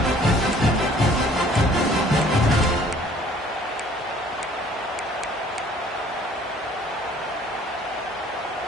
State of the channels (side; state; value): both; normal; correlation 0.55